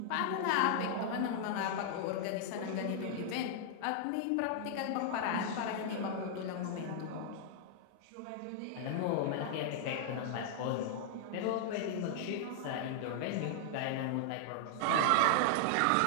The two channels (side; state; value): both; different; correlation -0.01